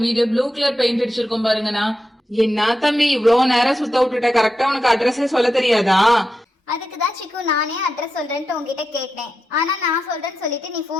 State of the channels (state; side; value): normal; both; correlation 0.88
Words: வீடு. ப்ளூ கலர் பெயிண்ட் அடிச்சிருக்கோம் பாருங்கண்ணா. என்ன தம்பி இவ்வளவு நேரம் சுத்த விட்டுட்ட, கரெக்டா உனக்கு அட்ரஸே சொல்ல தெரியாதா? அதுக்குதான் சிக்கு நானே அட்ரஸ் சொல்றேன்ட்டு உங்ககிட்ட கேட்டேன். ஆனா நான் சொல்றேன்னு சொல்லிட்டு நீ